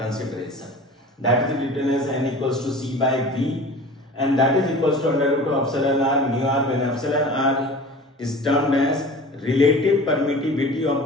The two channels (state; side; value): normal; both; correlation 0.40